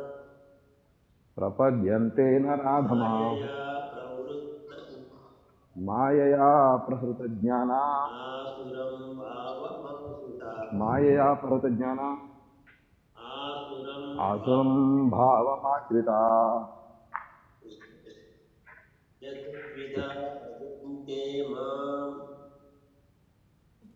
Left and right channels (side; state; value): both; identical; correlation 1.00